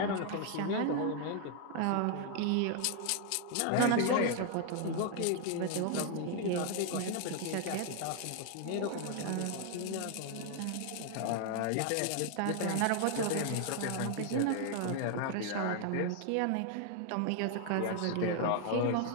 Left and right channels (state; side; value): different; both; correlation 0.00